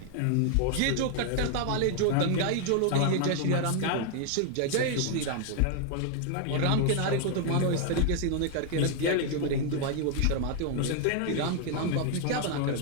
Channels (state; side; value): different; both; correlation 0.00